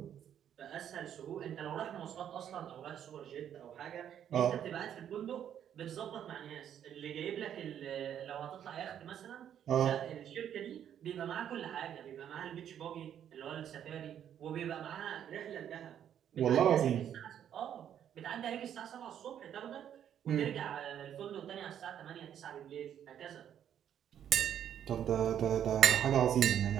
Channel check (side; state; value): left; quieter; 9.7 dB